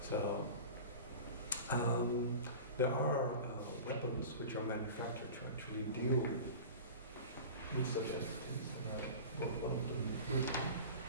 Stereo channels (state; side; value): inverted; both; correlation -0.34